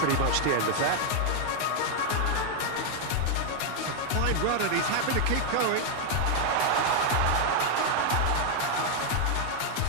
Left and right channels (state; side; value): different; both; correlation 0.00